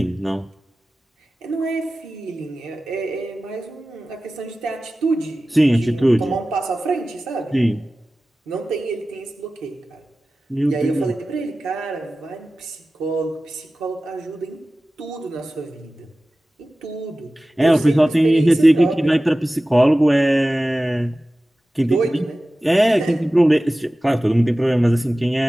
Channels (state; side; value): normal; both; correlation 0.96